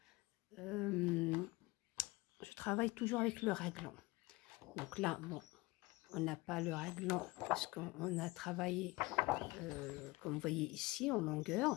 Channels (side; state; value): right; quieter; 22.1 dB